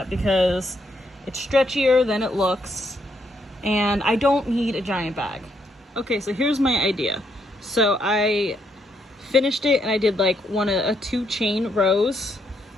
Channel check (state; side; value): normal; both; correlation 0.75